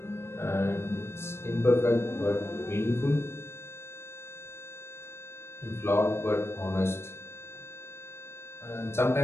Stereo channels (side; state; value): right; late; 0.12 ms